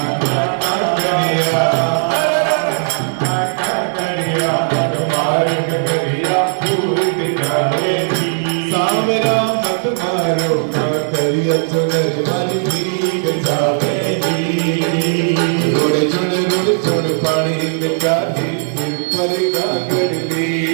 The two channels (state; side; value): silent; left; digital silence